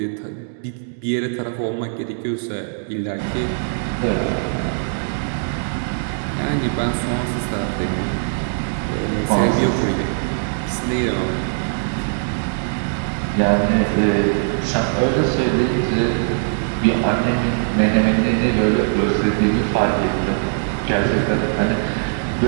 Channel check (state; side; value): silent; left; digital silence